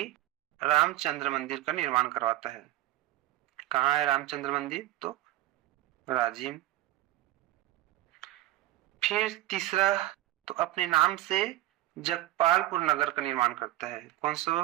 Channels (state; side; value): quieter; left; 15.7 dB